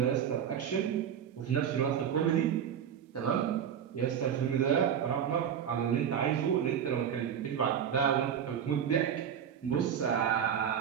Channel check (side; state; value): left; quieter; 8.6 dB